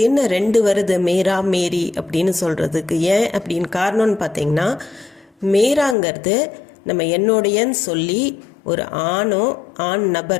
என்ன ரெண்டு வருது, மேரா மேரி அப்படின்னு சொல்கிறதுக்கு? ஏன் அப்படின்னு காரணம்னு பார்த்தீங்கன்னா, மேராங்கிறது நம்ம என்னுடையன்னு சொல்லி ஒரு ஆணோ ஆண்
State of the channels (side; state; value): right; drops out; at 6.0 s